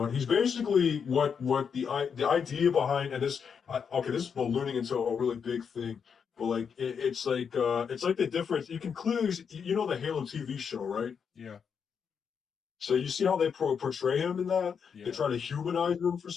basically what the idea behind, and okay, this is ballooning into a really big thing, but like it's like the difference. You can clearly the Halo TV show, right? Yeah. So you see how they portray him in that? They Yeah. try to humanize him for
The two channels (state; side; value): quieter; right; 6.7 dB